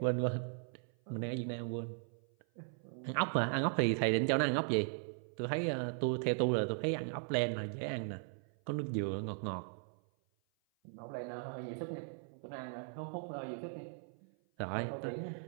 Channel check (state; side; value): silent; left; 52 dB below the other